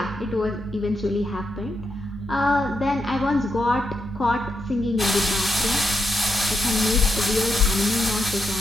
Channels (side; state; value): both; normal; correlation 0.83